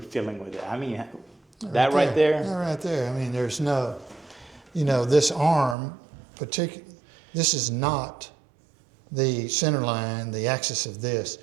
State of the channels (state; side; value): drops out; left; at 5.8 s